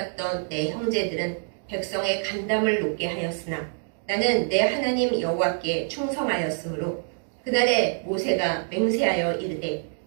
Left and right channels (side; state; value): left; silent; digital silence